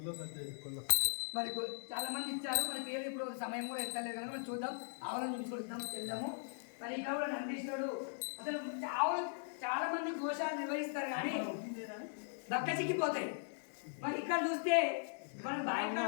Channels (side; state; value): right; silent; digital silence